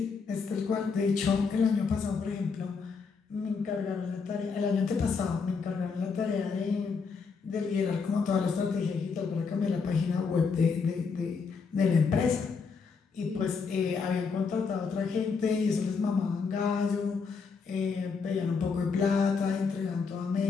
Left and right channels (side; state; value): right; quieter; 5.2 dB